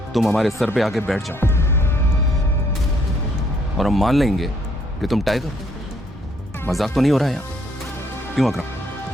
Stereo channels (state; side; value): normal; both; correlation 0.68